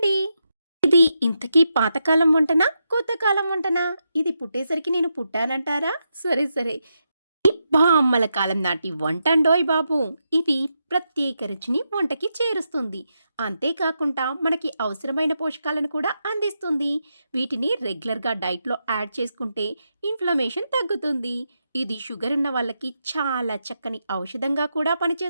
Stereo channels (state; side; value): inverted; both; correlation -0.85